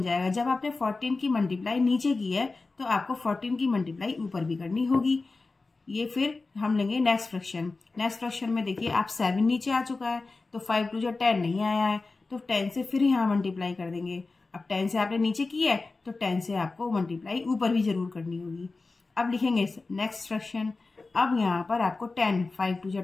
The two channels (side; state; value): right; quieter; 3.7 dB